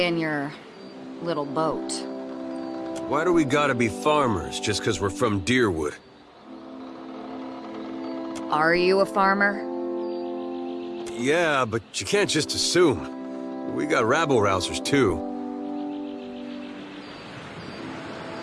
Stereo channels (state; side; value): identical; both; correlation 1.00